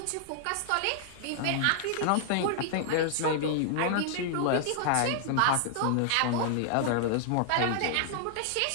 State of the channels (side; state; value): both; different; correlation -0.01